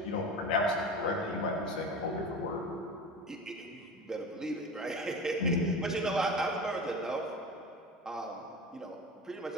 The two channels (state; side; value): normal; both; correlation 0.31